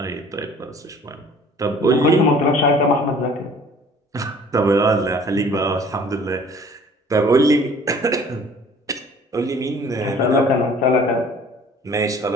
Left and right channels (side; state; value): both; normal; correlation 0.51